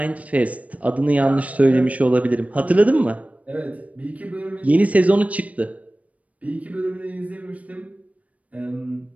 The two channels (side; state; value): left; late; 0.068 ms